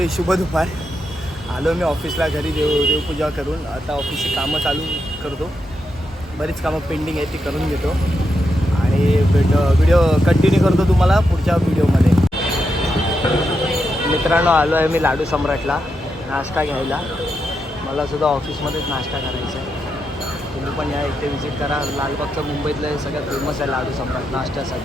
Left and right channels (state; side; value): normal; both; correlation 0.84